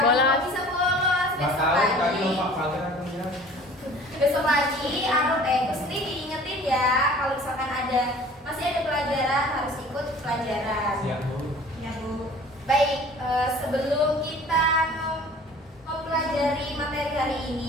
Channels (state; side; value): normal; both; correlation 0.47